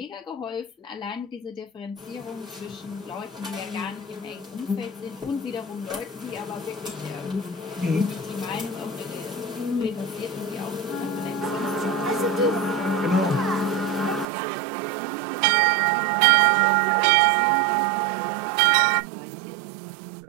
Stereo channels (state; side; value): drops out; left; at 14.2 s